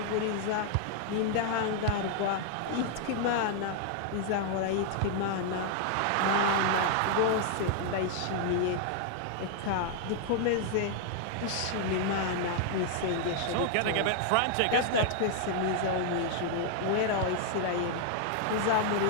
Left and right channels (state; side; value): different; both; correlation 0.00